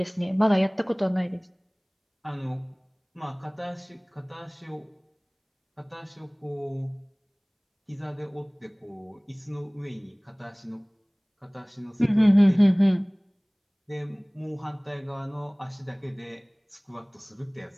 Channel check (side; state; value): both; identical; correlation 1.00